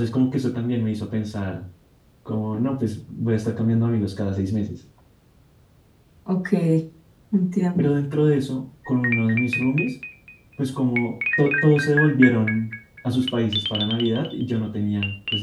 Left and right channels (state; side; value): identical; both; correlation 1.00